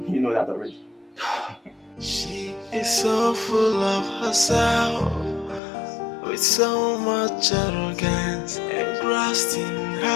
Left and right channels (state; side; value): drops out; right; at 5.6 s